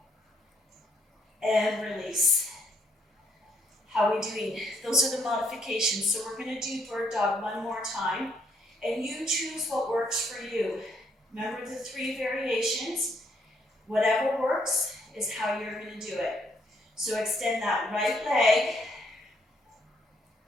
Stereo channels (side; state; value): both; normal; correlation 0.71